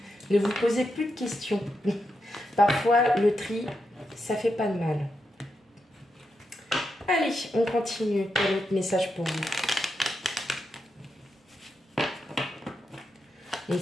Ne vous posez plus de questions. Parfois, le tri, ça fait pas de mal. Allez, on continue. Quel autre message pour vous? Donc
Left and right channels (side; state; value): both; normal; correlation 0.86